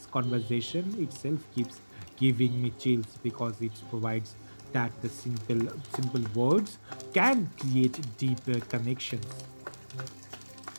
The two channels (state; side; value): inverted; both; correlation -1.00